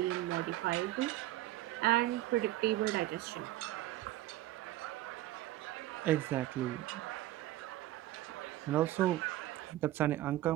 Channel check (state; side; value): quieter; left; 15.3 dB